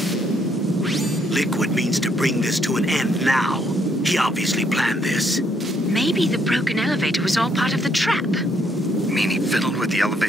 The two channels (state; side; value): normal; both; correlation 0.71